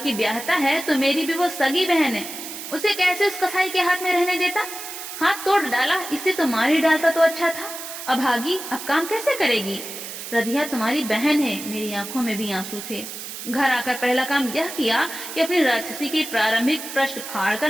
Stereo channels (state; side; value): noise; right; hiss, 9 dB below the sound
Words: ब्याहता है तो मेरी भी वो सगी बहन है। उसे कैसे उस कसाई के हाथ में रहने देता? हाथ तोड़ डाला, इससे तो मार ही डालता तो अच्छा था। अभागी, अब काम कैसे करेगी? रधिया तुम्हारी बहन है। मेरी आंखों में भी आंसू थे। घर आकर पहला काम यह किया कि अपनी राक्षसी के प्रारंभिक पृष्ठ